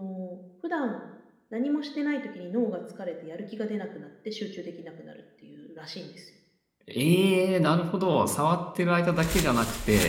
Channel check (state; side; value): identical; both; correlation 1.00